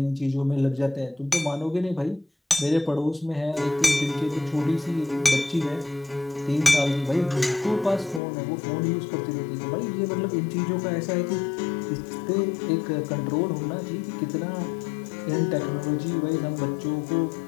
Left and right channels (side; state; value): right; drops out; at 8.2 s